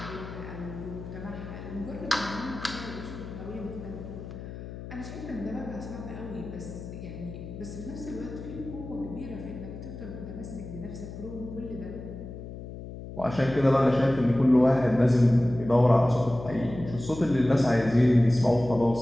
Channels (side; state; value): left; noise; hum, 11 dB below the sound